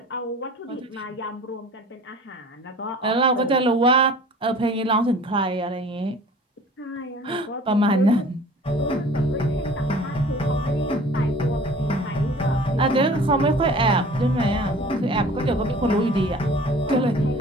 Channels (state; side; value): normal; both; correlation 0.46